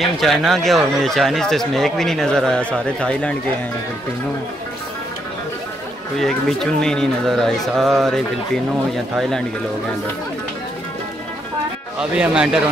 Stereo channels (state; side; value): normal; both; correlation 0.76